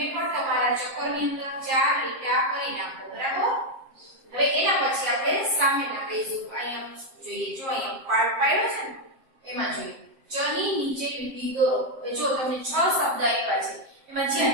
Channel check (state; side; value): late; left; 7.6 ms